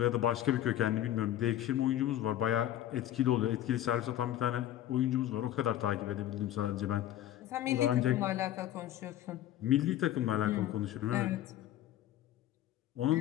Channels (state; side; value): quieter; right; 12.6 dB